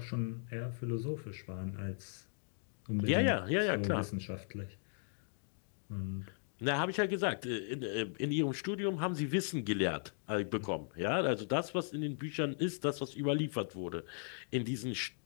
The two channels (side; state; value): right; silent; digital silence